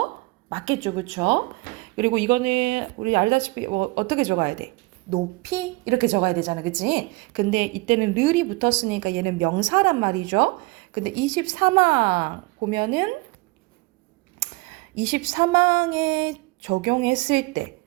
맞겠죠. 그쵸? 그리고 이거는 우리 알다시피 어떻게 적어야 돼? 높이 이렇게 적어야 되잖아. 그치? 근데 이때는 르이 붙었으니까 얘는 명사란 말이죠. 근데 23항 보면은 23항에 적용했을 때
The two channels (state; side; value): quieter; left; 23.7 dB